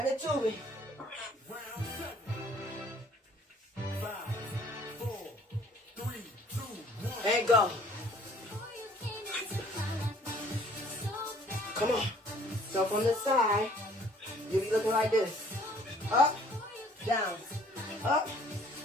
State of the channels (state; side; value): normal; both; correlation 0.56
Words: the tubing. And go. Come on. So from the side, you'll be looking like this. Up, down, up,